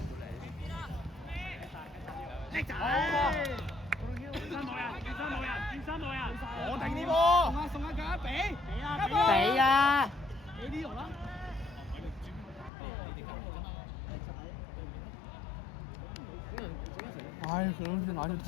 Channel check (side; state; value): right; drops out; at 12.7 s